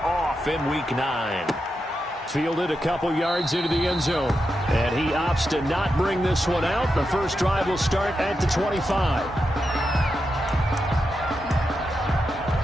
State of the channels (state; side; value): normal; both; correlation 0.87